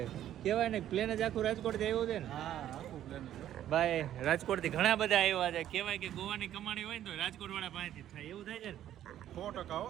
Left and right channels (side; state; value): left; quieter; 11.7 dB